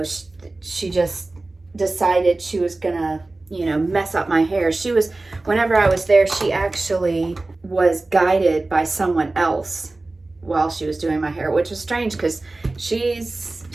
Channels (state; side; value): quieter; left; 3.1 dB